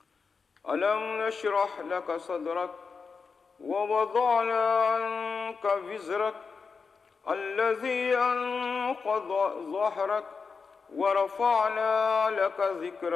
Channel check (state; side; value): quieter; right; 5.1 dB